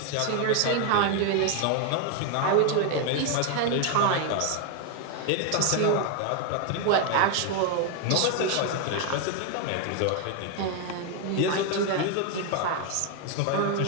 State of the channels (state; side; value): different; both; correlation 0.01